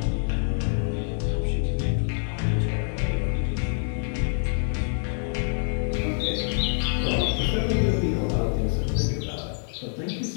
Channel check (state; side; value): silent; right; 61 dB below the other